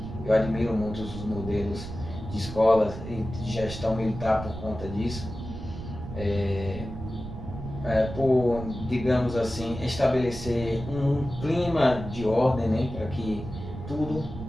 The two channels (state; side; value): noise; right; rumble, 9 dB below the sound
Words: Eu admiro muito os modelos de escolas e de gestão militar por conta disso, por, digamos assim, estabelecer um clima de ordem, né, para que tudo